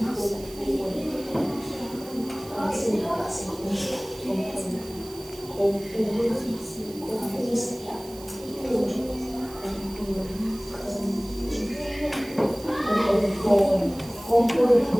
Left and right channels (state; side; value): noise; right; hiss, 18 dB below the sound